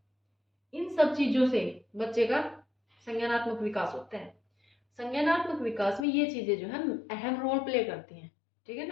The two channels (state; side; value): drops out; right; at 6.1 s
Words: इन सब चीजों से बच्चे का संज्ञानात्मक विकास होता है। संज्ञानात्मक विकास में ये चीजें जो है अहम रोल प्ले करती हैं, ठीक है